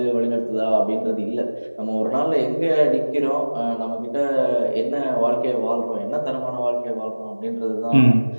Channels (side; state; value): both; inverted; correlation -1.00